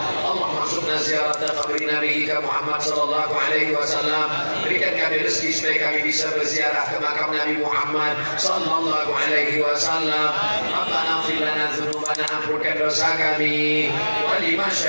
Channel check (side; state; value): both; inverted; correlation -1.00